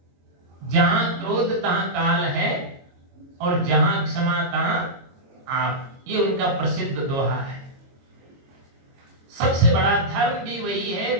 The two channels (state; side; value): late; left; 22 ms